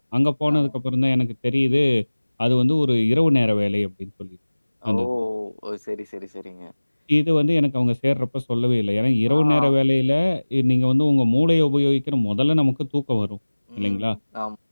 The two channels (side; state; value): both; inverted; correlation -1.00